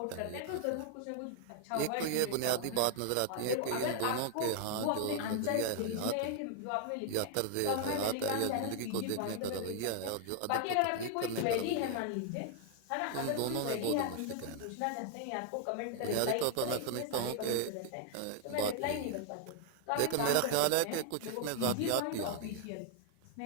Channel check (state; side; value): different; both; correlation 0.00